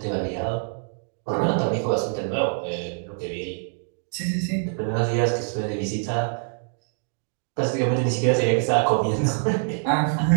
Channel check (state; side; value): silent; left; 62 dB below the other